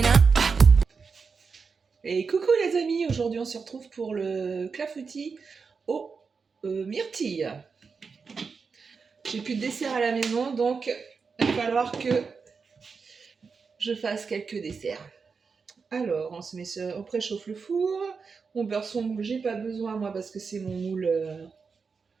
Et coucou les amis, aujourd'hui on se retrouve pour le clafoutis aux myrtilles. J'ai plus de dessert à la maison, donc il va falloir que je fasse quelques desserts. Alors, on se met on préchauffe le four, on beurre son moule, j'ai pas besoin moi parce que c'est mon moule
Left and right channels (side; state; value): left; quieter; 5.2 dB